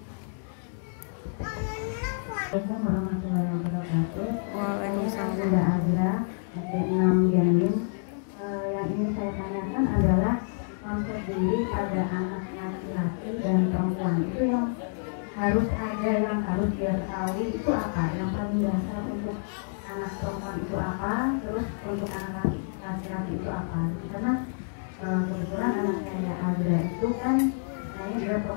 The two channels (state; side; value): silent; right; digital silence